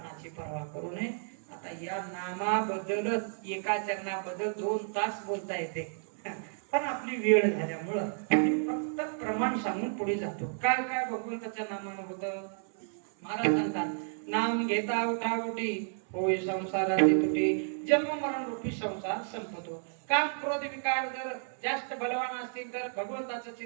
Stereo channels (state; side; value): silent; left; 57 dB below the other